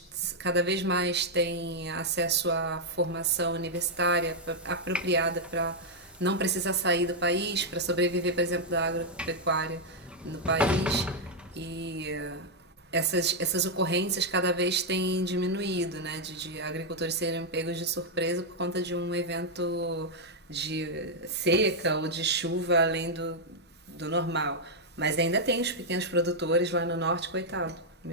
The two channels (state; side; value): normal; both; correlation -0.02